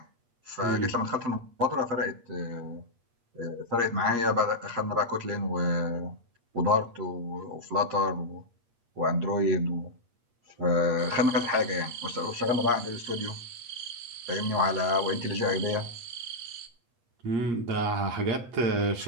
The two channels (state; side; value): late; left; 8.5 ms